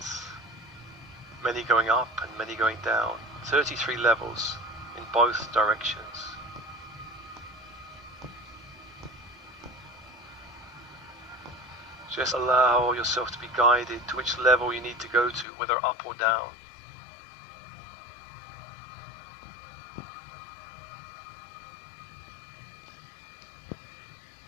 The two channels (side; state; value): right; drops out; at 15.5 s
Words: many going up and many going down. 33 levels in both directions. Just allow yourself to be guided to which level you need to go to, whether up or down.